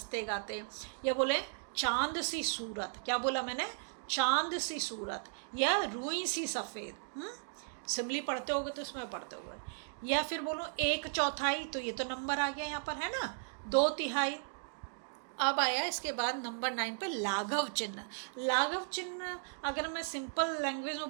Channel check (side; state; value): left; silent; digital silence